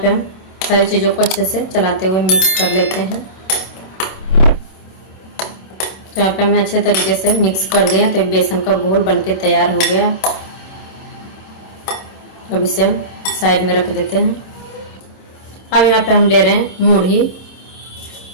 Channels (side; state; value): right; late; 27 ms